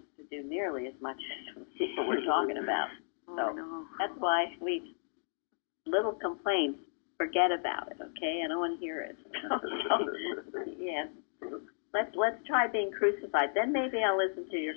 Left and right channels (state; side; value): silent; right; digital silence